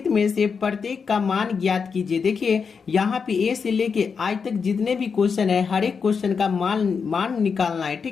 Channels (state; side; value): quieter; right; 5.7 dB